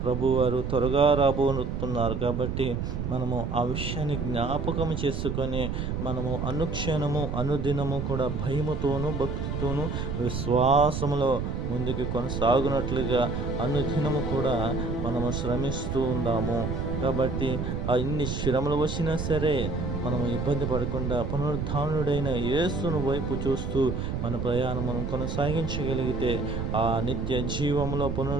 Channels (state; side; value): noise; right; rumble, 3 dB below the sound